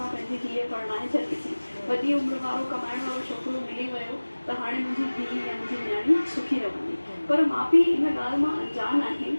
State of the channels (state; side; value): inverted; both; correlation -1.00